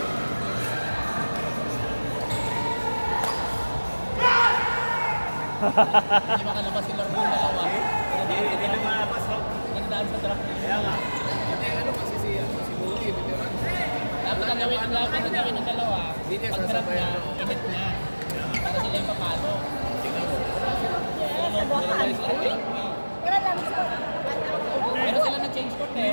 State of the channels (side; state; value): both; inverted; correlation -1.00